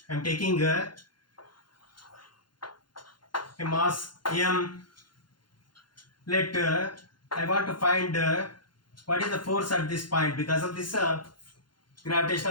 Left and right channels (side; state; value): right; late; 0.71 ms